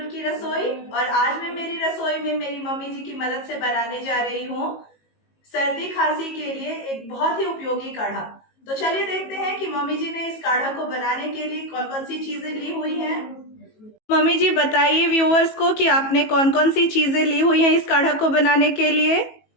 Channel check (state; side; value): late; right; 18 ms